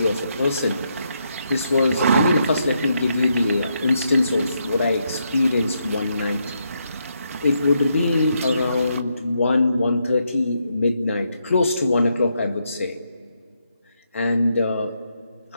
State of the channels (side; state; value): both; inverted; correlation -0.79